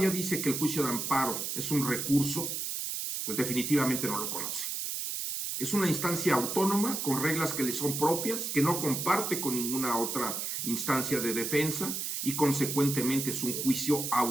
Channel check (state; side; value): noise; right; hiss, 3 dB below the sound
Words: dice que el juicio de amparo es un recurso, pues definitivamente no lo conoce. Es una instancia autónoma con reglas que le son propias, que no comparte con ninguna otra instancia de defensa y consecuentemente es un juicio